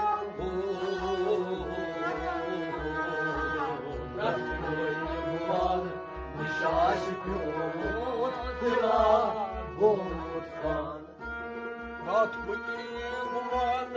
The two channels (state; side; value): identical; both; correlation 1.00